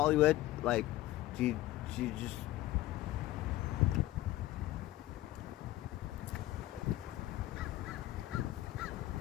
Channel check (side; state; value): right; quieter; 15.8 dB